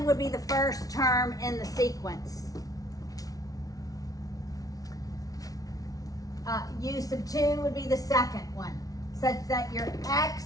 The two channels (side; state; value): right; late; 0.18 ms